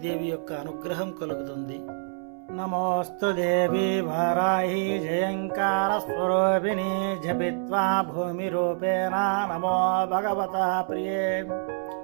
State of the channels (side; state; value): left; silent; 60 dB below the other